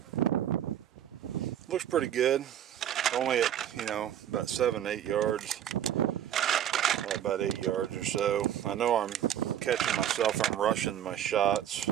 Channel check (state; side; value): quieter; left; 10.5 dB